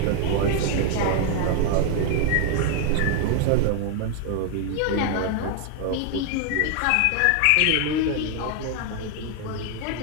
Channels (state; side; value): different; both; correlation 0.00